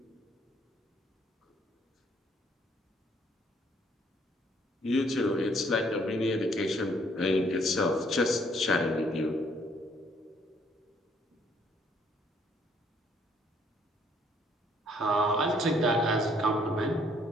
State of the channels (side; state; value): both; normal; correlation 0.65